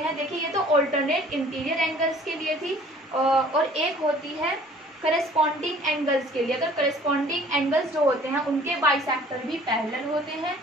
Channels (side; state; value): both; normal; correlation 0.52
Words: देखिए ये तो ऑल्टरनेट इंटीरियर एंगल्स के लिए थी, और एक होती है करेस्पॉन्डिंग एंगल्स के लिए। अगर करेस्पॉन्डिंग एंगल्स जो होते हैं उनके बाइसेक्टर भी पैरेलल होते हैं,